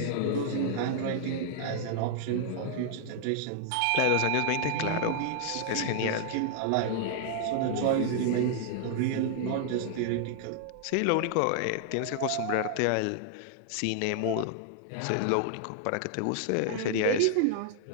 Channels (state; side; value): different; both; correlation 0.00